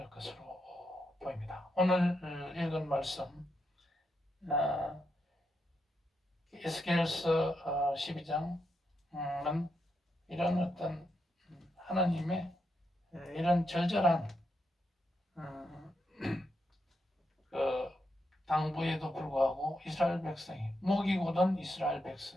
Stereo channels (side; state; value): both; normal; correlation 0.83